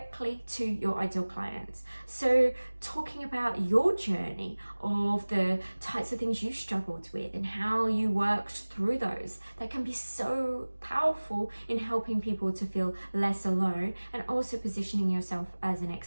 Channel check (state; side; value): inverted; both; correlation -1.00